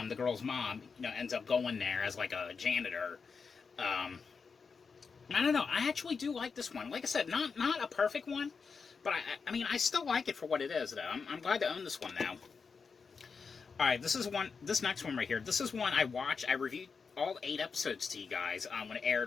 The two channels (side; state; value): right; quieter; 5.3 dB